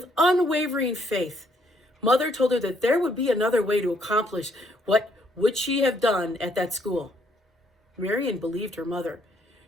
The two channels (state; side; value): normal; both; correlation 0.70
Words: unwavering faith, Mother told her that there would be another way to accomplish what would she have done at that school. Marian believed her mother.